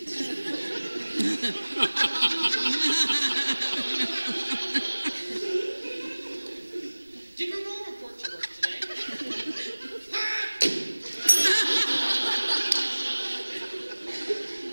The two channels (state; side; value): inverted; both; correlation -1.00